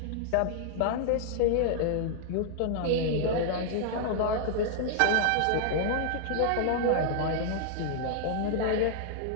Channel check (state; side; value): different; both; correlation -0.01